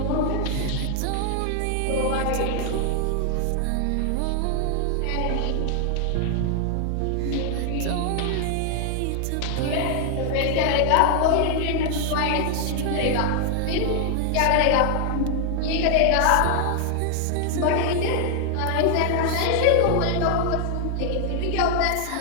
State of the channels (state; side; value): different; both; correlation 0.00